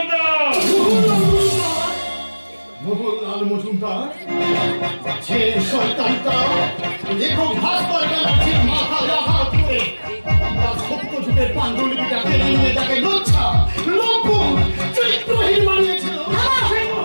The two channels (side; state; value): both; inverted; correlation -1.00